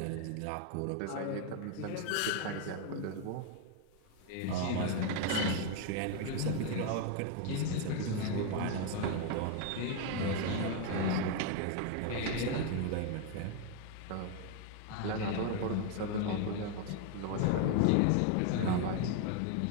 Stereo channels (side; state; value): both; different; correlation 0.01